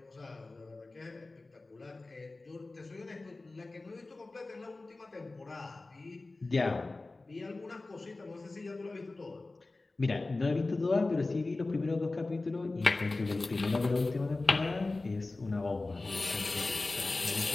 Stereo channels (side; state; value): right; quieter; 3.3 dB